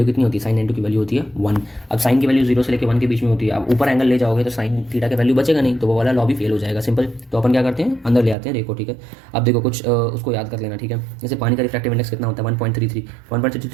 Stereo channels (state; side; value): drops out; left; at 8.3 s